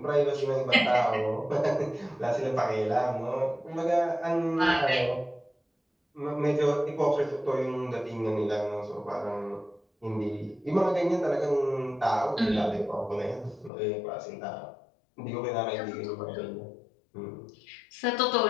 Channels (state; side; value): drops out; right; at 13.7 s